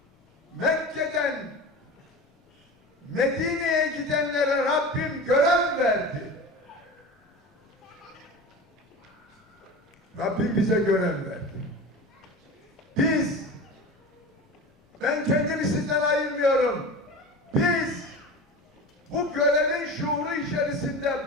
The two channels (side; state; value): both; normal; correlation 0.31